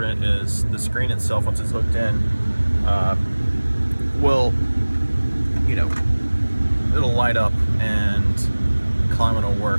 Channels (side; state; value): both; inverted; correlation -1.00